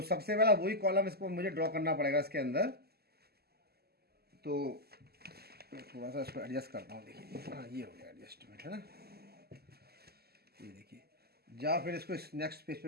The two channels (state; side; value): late; left; 0.46 ms